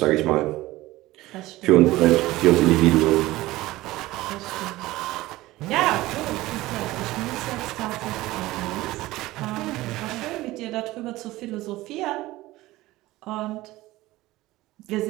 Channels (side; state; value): left; quieter; 18.0 dB